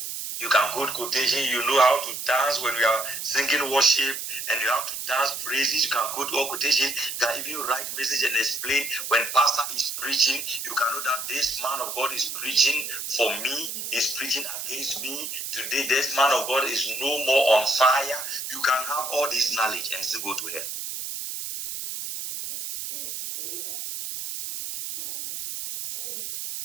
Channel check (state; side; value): noise; right; hiss, 6 dB below the sound